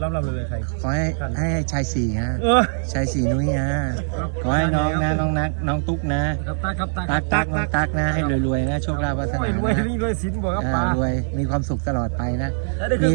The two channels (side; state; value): left; silent; 64 dB below the other